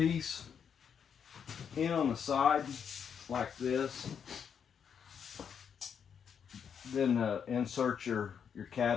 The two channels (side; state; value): right; quieter; 7.4 dB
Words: in on the side like this. Then insert your